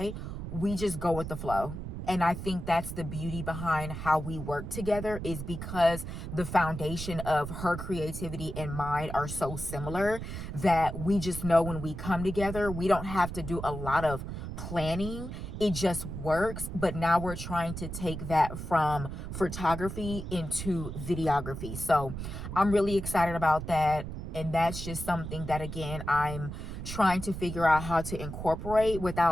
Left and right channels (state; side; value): noise; right; rumble, 7 dB below the sound